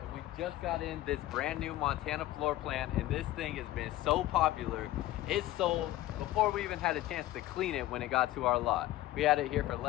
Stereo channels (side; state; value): right; quieter; 15.4 dB